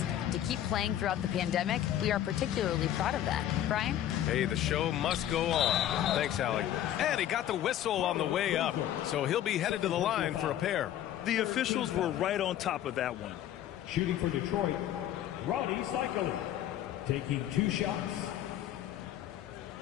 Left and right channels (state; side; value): quieter; right; 11.8 dB